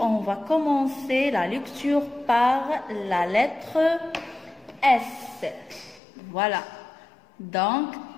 va commencer la lecture par la lettre S. Voilà. Donc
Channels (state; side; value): drops out; right; at 6.0 s